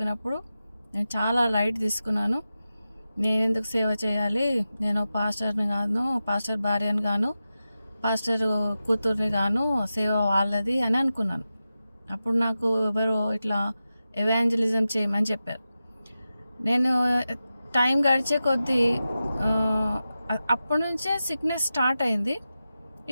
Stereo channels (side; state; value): both; inverted; correlation -0.92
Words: నేను చాలా లైట్ తీసుకున్నాను. నేను ఎందుకు సేవ చేయాలి, నేను పాస్టర్ని గాను, పాస్టర్ భార్యని గాను, పాస్టర్ కూతుర్ని గాను, సేవ వాళ్ళది అని అనుకున్నాను. అప్పుడు నాకు ఎవరో ఇట్లా ఎవాంజలిజం చేయమని చెప్పారు. నేను టైం గడిచే కొద్దీ అప్పటి నుంచే సిక్నెస్ స్టార్ట్ అయింది.